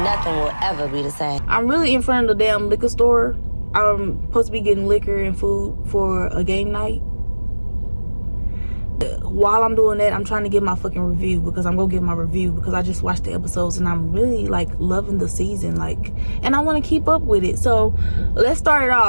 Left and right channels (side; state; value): both; inverted; correlation -1.00